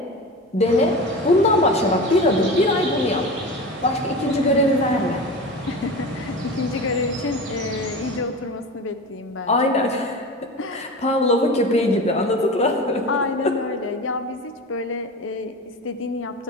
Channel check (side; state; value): both; normal; correlation 0.30